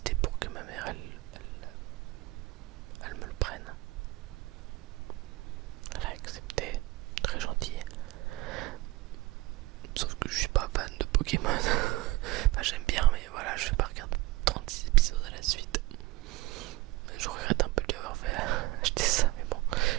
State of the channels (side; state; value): left; quieter; 20.4 dB